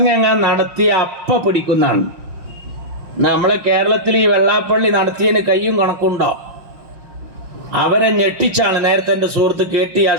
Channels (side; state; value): left; late; 5.7 ms